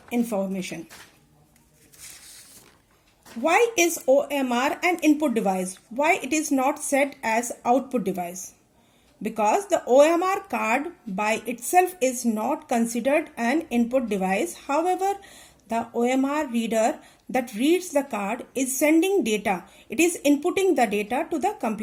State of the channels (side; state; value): both; identical; correlation 1.00